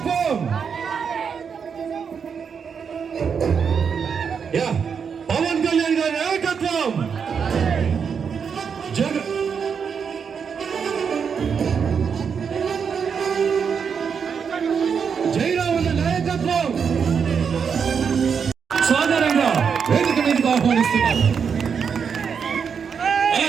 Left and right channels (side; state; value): left; quieter; 6.6 dB